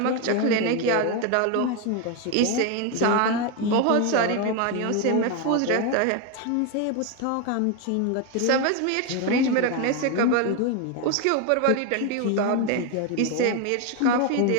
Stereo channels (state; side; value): different; both; correlation 0.02